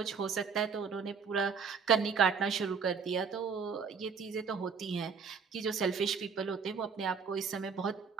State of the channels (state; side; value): quieter; left; 5.9 dB